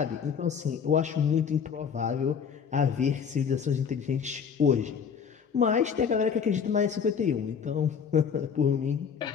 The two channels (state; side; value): quieter; right; 6.9 dB